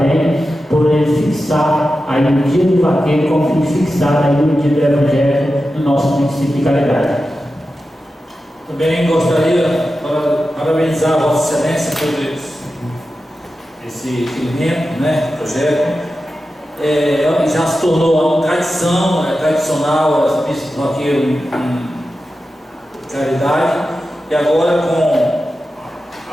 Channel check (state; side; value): normal; both; correlation 0.92